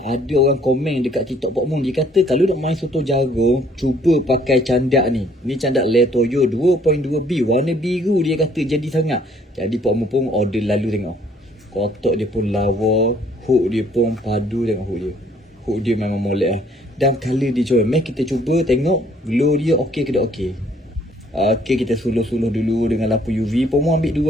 ada orang komen dekat TikTok Pak Mun. Dia kata kalau nak main soto jagung, cuba pakai candak ni. Ni candak Le Toyo 2.2B. Warna biru dia kata jadi sangat. Jadi Pak Mun pun order lalu tengok. Kotak dia pun lawa. Hook dia pun padu, tengok hook dia. Hook dia memang molek lah. Dan colour dia comel. Mari kita cuba tengok glow dia okey ke tak okey. Okey, kita suluh-suluh dulu dengan lampu UV. Pak Mun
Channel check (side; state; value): both; normal; correlation 0.62